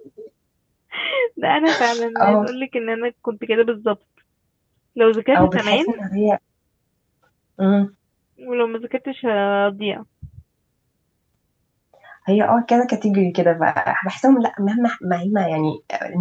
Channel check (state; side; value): identical; both; correlation 1.00